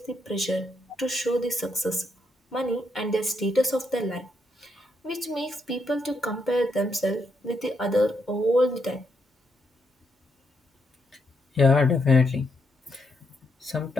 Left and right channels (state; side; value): normal; both; correlation 0.78